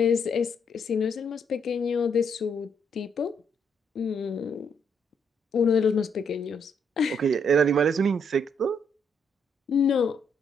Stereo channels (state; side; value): normal; both; correlation 0.73